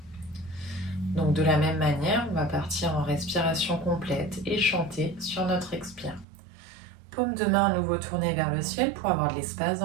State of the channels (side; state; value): left; drops out; at 6.2 s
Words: Donc de la même manière, on va partir en respiration complète et chanter sur notre expire. Paume de main à nouveau tournée vers le ciel pour avoir de l'espace